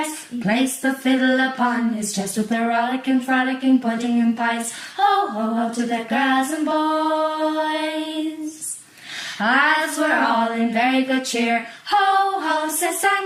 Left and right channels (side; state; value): both; identical; correlation 1.00